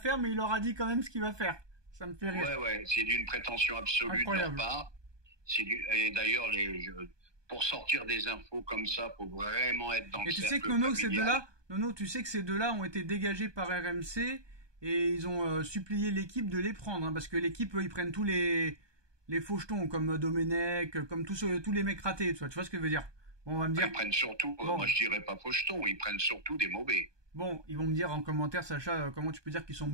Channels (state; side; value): late; left; 1.2 ms